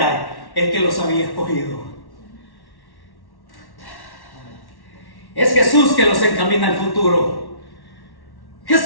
el que los había escogido. Es Jesús que los encamina al futuro.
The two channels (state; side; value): late; right; 1.1 ms